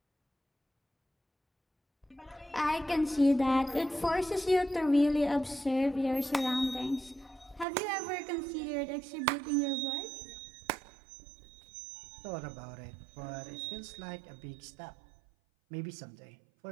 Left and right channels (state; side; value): drops out; left; at 7.7 s